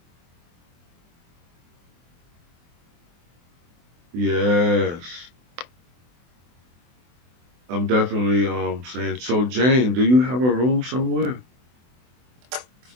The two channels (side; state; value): left; late; 24 ms